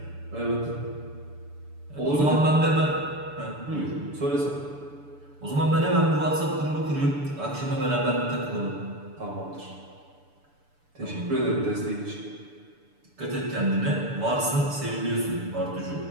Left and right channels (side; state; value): left; late; 6.9 ms